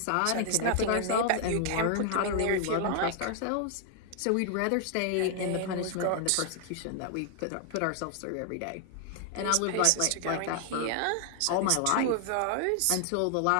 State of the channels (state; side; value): different; both; correlation 0.00